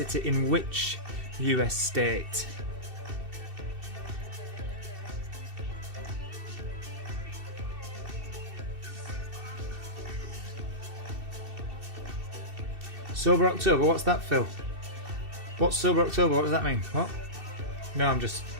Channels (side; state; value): left; late; 2.7 ms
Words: in which US state? Sober October, what's that, Phil? What's Sober October? What does that mean? What? No, I'm just...